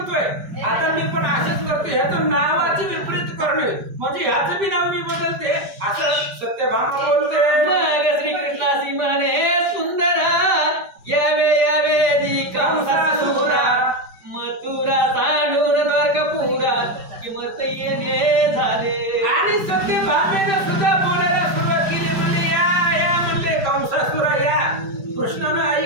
आता मी पण असेच करतो, ह्याचं नावाचे विपरीत करणे म्हणजे ह्याचं बी नाव मी बदलते असं सत्यभामा बोलते. मग श्रीकृष्णासी म्हणे सुंदरा, यावे यावे दी कंसासुरा, मथुरा सांडून द्वारकापुरा, किंमत येणे झाले. आणि सत्यभामेने सुद्धा बोलायला सुरुवात केली. म्हणजे या म्हणले कंसासुरा या. कृष्णानं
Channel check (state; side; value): late; left; 4.9 ms